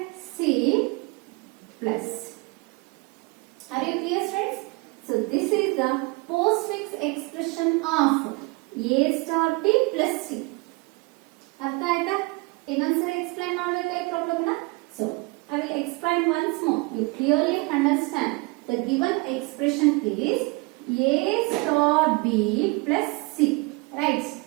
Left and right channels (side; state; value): left; quieter; 26.8 dB